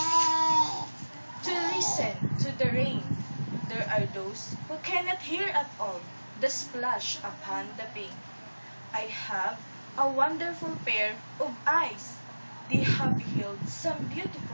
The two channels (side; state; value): both; inverted; correlation -1.00